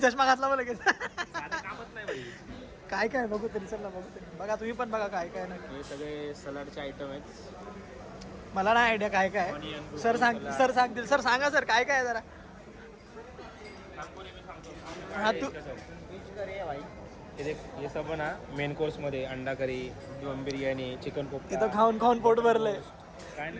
घातला मला लगेच काय बघू तरी चला बघू तरी बघा तुम्ही पण बघा काय नाही हे सगळे सलाडचे आयटम आहेत मला नाही आयडिया काय सर सांगतील सर सांगा सर काय आहे जरा हा तू हे सब ना मेन कोर्स मध्ये अंडा करी दम बिर्याणी चिकन कोफ्ता तिथं खाऊन पोट भरलंय काय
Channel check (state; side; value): identical; both; correlation 1.00